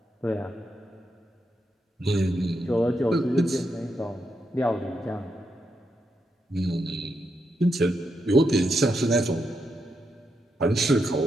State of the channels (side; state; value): both; normal; correlation 0.83